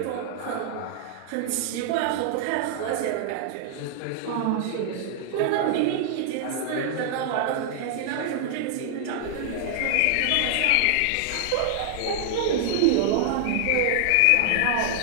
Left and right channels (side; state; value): both; different; correlation -0.01